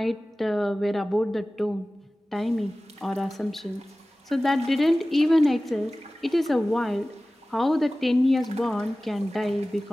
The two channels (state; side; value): normal; both; correlation 0.97